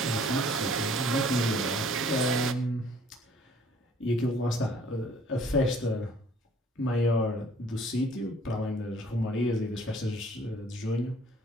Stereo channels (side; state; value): both; normal; correlation 0.57